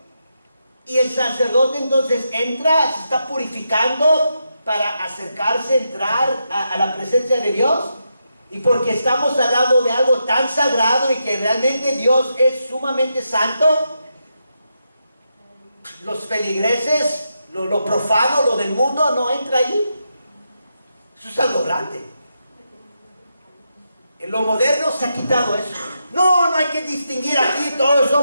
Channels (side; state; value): both; inverted; correlation -0.84